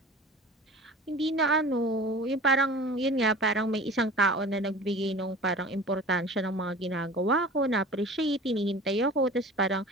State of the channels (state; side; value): normal; both; correlation 0.40